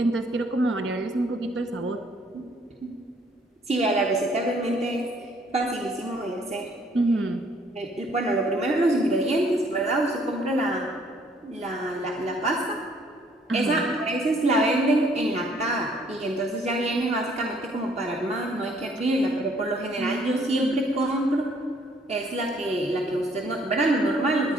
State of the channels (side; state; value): both; normal; correlation 0.63